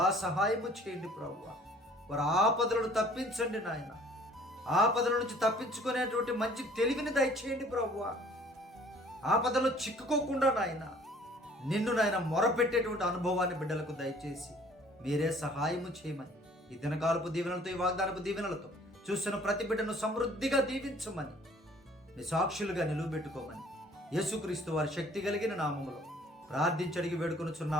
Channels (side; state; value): both; normal; correlation 0.55